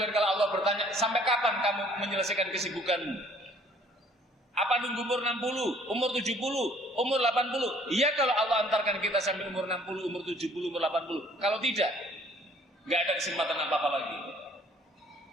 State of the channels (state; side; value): normal; both; correlation 0.58